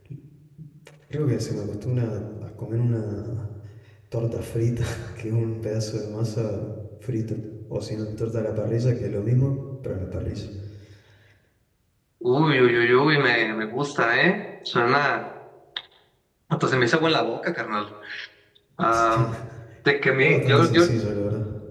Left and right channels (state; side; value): identical; both; correlation 1.00